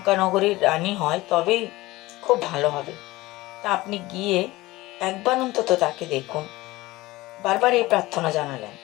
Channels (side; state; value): right; quieter; 19.2 dB